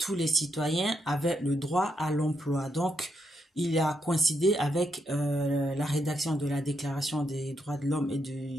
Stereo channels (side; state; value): both; normal; correlation 0.80